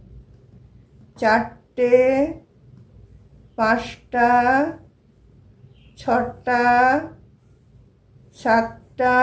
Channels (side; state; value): both; identical; correlation 1.00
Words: চারটে পাঁচটা ছটা সাতটা